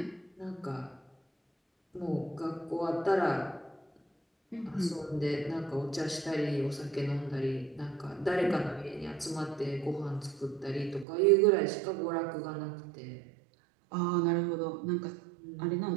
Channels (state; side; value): drops out; left; at 11.1 s